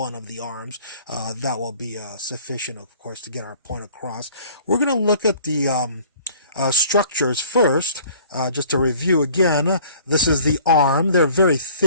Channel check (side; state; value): both; inverted; correlation -0.51